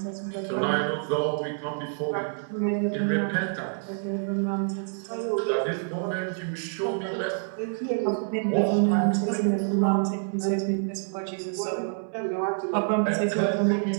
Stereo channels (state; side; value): silent; left; 60 dB below the other